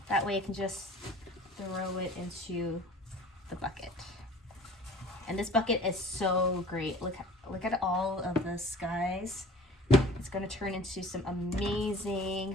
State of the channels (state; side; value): normal; both; correlation 0.45